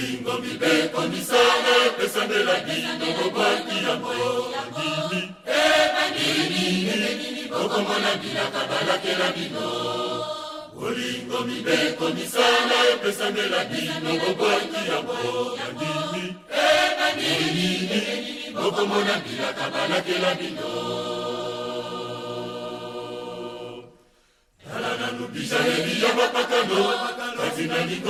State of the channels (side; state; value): both; identical; correlation 1.00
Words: mibeko misala pesandela bino bobaki yango bandimi bokomona bilaka balakela bino bolingo mibeko misala pesandela bino bobaki yango bandimi bokomona bilaka balakela bino talana nubijaneli ya bapakano katina